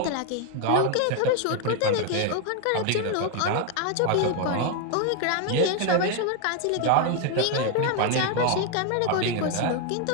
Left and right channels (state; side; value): different; both; correlation 0.01